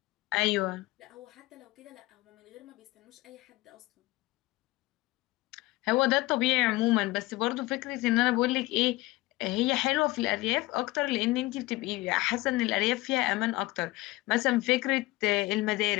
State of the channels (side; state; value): right; quieter; 20.1 dB